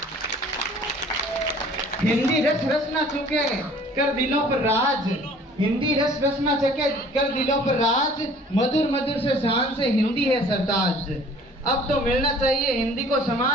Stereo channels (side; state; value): both; normal; correlation 0.52